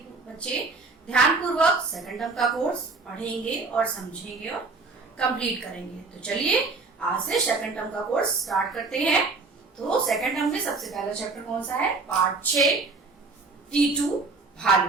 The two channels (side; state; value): left; quieter; 3.9 dB